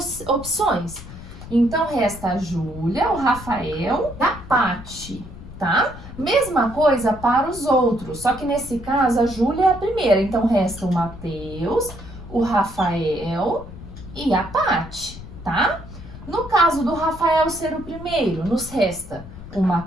opções. Então, resta a Júlia, o Rafael e a Paty, tá? Mesma coisa para os outros, só que nesse caso a Júlia é a primeira. Então, resta o Matheus, o Rafael e a Paty, tá? No caso do Rafael ser o primeiro, nos resta o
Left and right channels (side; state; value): left; noise; rumble, 14 dB below the sound